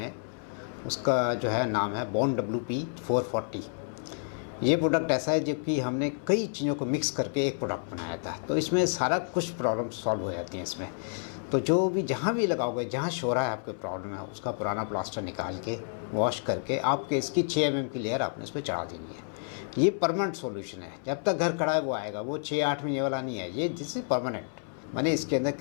उसका जो है नाम है बॉन्ड WP440। ये प्रोडक्ट ऐसा है जो कि हमने कई चीज़ों को मिक्स करके एक प्रोडक्ट बनाया था, तो इसमें सारा कुछ प्रॉब्लम सॉल्व हो जाती हैं इसमें। तो जो भी जहाँ भी लगाओगे, जहाँ शोरा है आपके प्रॉब्लम है, उसका पुराना प्लास्टर निकाल के वॉश करके आपके इसकी 6 mm की लेयर आपने इस पर चढ़ा देनी है। ये परमानेंट सॉल्यूशन है, जब तक घर खड़ा है वो आएगा, वो 6-8 महीने वाला नहीं है। ये दिस इज परमानेंट, माने इसके अंदर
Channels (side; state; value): right; silent; 58 dB below the other